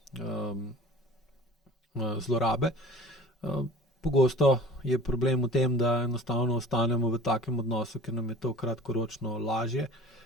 zlorabe. Pogosto je problem v tem, da enostavno ostanemo v takem odnosu, ker nam je to kratkoročno lažje,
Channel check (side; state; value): both; normal; correlation 0.43